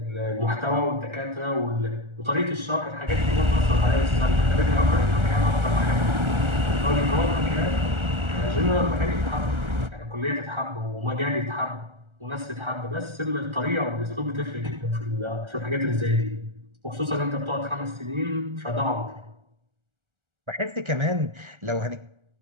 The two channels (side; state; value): left; late; 1.3 ms